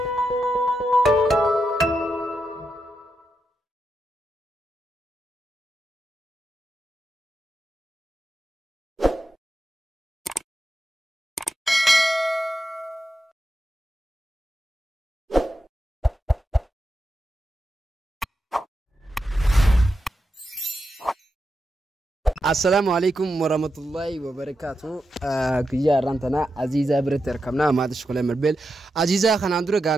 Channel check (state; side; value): normal; both; correlation 0.87